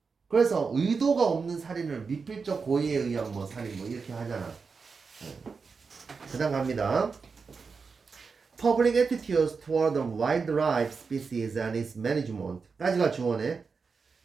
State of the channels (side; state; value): left; quieter; 5.0 dB